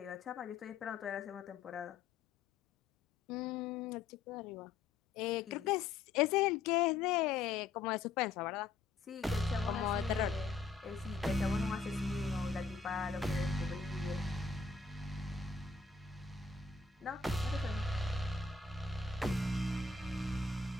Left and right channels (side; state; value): right; quieter; 4.4 dB